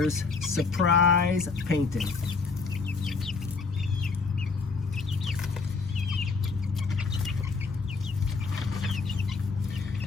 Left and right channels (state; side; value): quieter; right; 4.5 dB